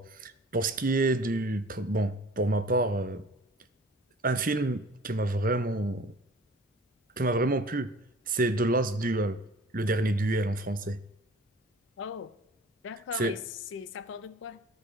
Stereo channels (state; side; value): normal; both; correlation 0.46